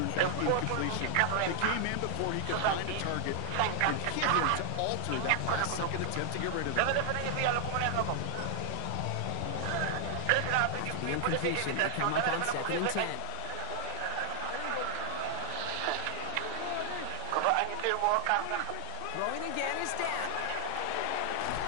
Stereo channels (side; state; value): both; different; correlation 0.00